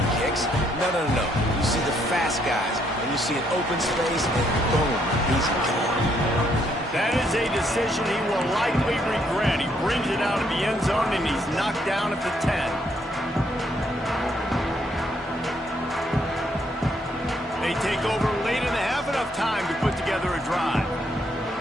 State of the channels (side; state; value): both; normal; correlation 0.71